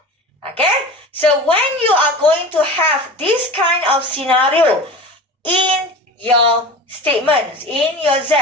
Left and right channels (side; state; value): both; normal; correlation 0.34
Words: Okay, so when you are going to have this kind of scenario in your statements, in your Z,